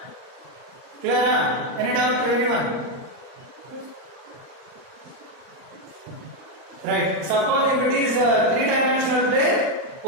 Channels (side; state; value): left; late; 39 ms